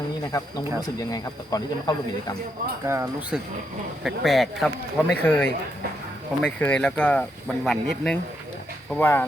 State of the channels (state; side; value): normal; both; correlation 0.79